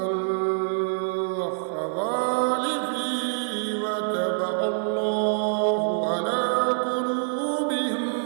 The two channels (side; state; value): left; silent; digital silence